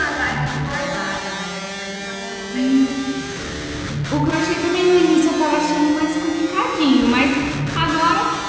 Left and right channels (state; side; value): identical; both; correlation 1.00